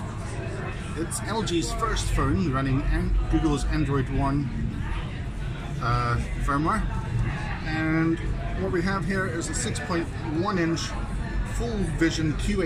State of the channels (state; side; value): identical; both; correlation 1.00